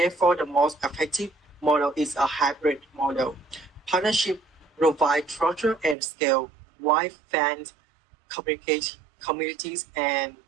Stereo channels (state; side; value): drops out; left; at 6.0 s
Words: the most effective model is a hybrid model. Partnership provide structure and scale, while fans, communities, and